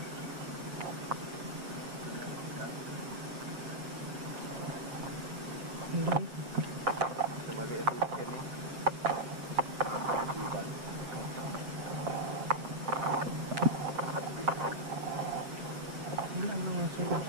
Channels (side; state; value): left; late; 7.6 ms